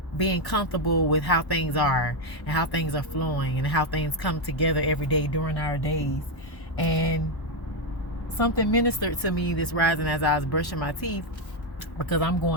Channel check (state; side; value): late; right; 1.1 ms